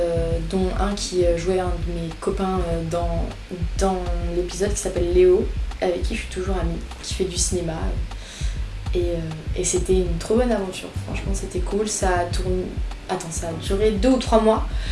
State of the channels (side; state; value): both; identical; correlation 1.00